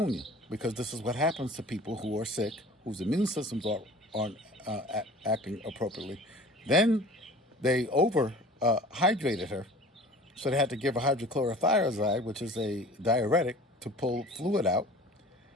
because this is what happens to people who are sick, whose immune systems aren't acting appropriately. Then they hydrated her, so they had to give her hydrochlorothiazide, which is a diuretic, to pull fluid out.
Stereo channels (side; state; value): both; normal; correlation 0.44